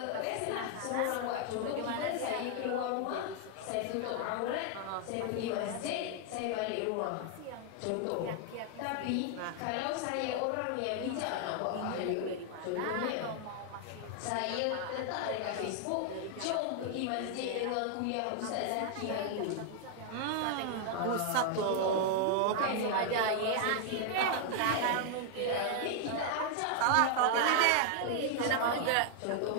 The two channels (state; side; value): different; both; correlation 0.00